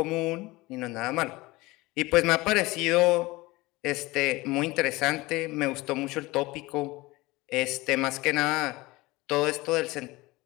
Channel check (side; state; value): right; quieter; 21.1 dB